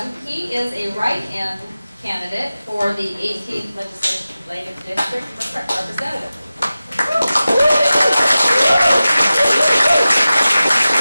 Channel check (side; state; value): both; inverted; correlation -0.95